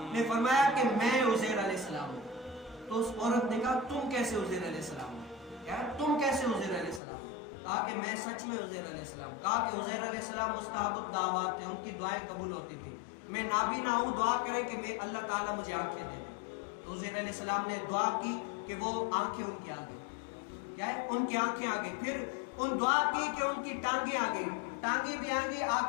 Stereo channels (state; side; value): drops out; right; at 7.0 s